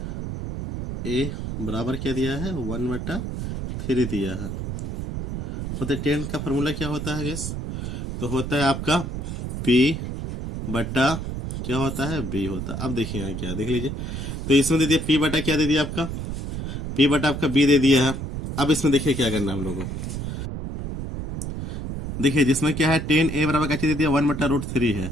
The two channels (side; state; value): right; noise; rumble, 5 dB below the sound